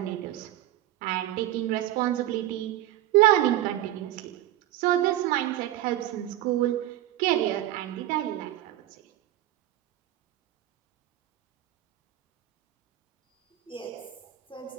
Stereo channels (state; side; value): quieter; left; 13.8 dB